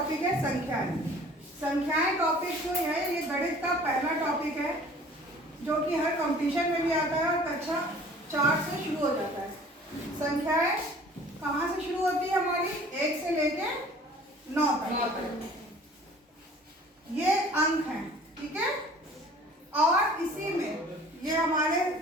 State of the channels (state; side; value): normal; both; correlation 0.49